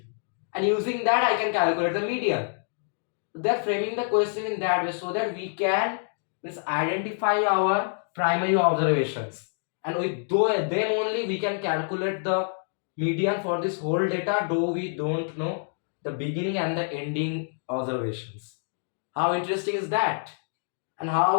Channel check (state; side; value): silent; right; digital silence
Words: And using that I can calculate the median. They're framing the question in that way so that we can identify our primary observations. And with them only we can calculate the median for this whole data, though we don't know the beginning and the ending observations. How interesting is that? And